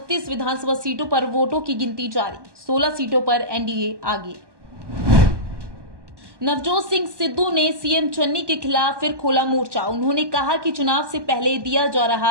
विधानसभा सीटों पर वोटों की गिनती जारी। 16 सीटों पर एनडीए आगे। नवजोत सिंह सिद्धू ने सीएम चन्नी के खिलाफ फिर खोला मोर्चा। उन्होंने कहा कि चुनाव से पहले दिया जा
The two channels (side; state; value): left; late; 1.2 ms